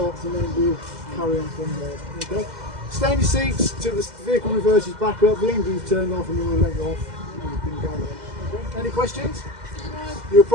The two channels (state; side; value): late; left; 2.0 ms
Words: and then we'll carry on from there. Okay? Stay in your seats till the vehicle reverses back up, the engine's turned off and then we'll let you off and you can go again. Okay? Any questions? You'll